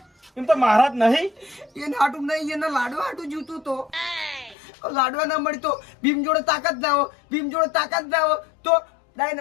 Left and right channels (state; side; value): drops out; right; at 4.5 s